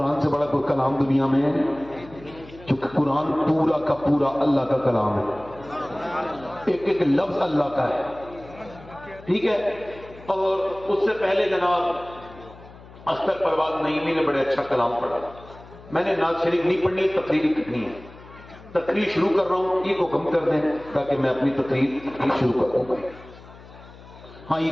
سے بڑا کوئی کلام دنیا میں ہے؟ کیونکہ قرآن پورا کا پورا اللہ کا کلام ہے، ایک ایک لفظ اللہ کا ہے، ٹھیک ہے۔ اور اس سے پہلے جناب اختر پروان نعیمی نے بڑے اچھا کلام پڑھا۔ میں نے نعت شریف نہیں پڑھنی، تقریر کرنی ہے، تقریر شروع کر رہا ہوں، ای کو کم کر دیں تاکہ میں اپنی تقریر شروع کر دوں۔ ہاں ای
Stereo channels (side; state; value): left; noise; hum, 20 dB below the sound